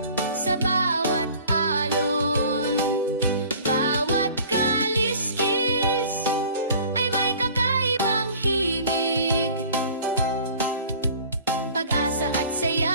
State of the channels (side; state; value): both; inverted; correlation -0.47